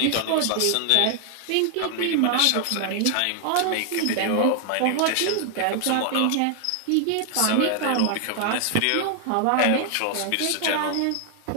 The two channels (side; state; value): both; different; correlation 0.00